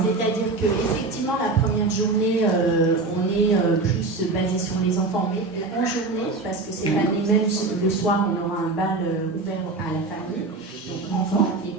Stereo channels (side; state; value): left; quieter; 3.5 dB